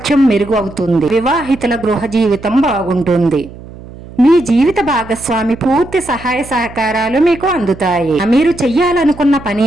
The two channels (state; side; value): noise; right; hum, 17 dB below the sound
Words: మెరుగు అవుతుంది. వివాహితుల గృహ జీవితం బాగుంటుంది. మీ జీవిత భాగస్వామి పూర్తి సహాయ సహకారాలు మీకు అందుతాయి. మీరు చెయ్యాలనుకున్న పని